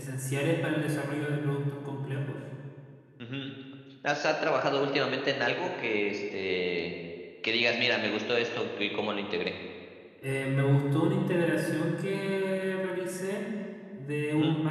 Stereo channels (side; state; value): both; identical; correlation 1.00